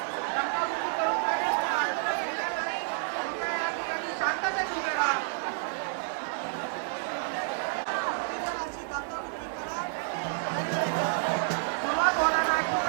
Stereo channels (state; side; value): silent; left; 58 dB below the other